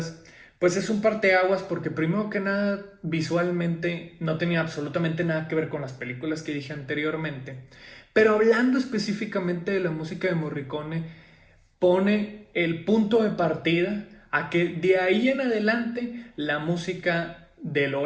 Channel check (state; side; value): identical; both; correlation 1.00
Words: pues es un parteaguas porque primero que nada, visualmente no tenía absolutamente nada que ver con las películas que dije anteriormente. Pero hablando específicamente de la música de Morricone, pone el punto de partida a que de ahí en adelante la música del